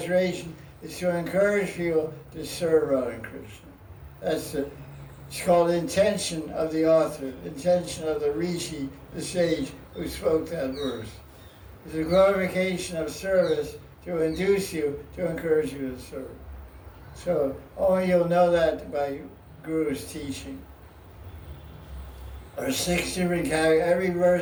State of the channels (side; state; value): both; identical; correlation 1.00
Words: is to encourage people to serve Radha and Krishna. It's called intention of the author, intention of the rishi, the sage who spoke that verse. It's a glorification of service to induce you, to encourage you to serve. So only you'll know that by Guru's teaching. There are 6 different categories. Every